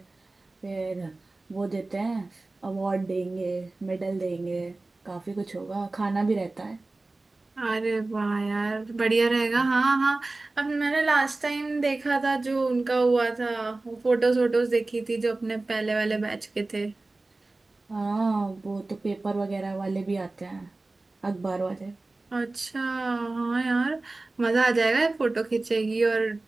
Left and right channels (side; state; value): left; quieter; 3.2 dB